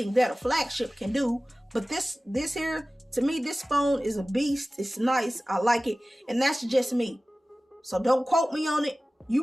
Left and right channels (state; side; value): normal; both; correlation 0.97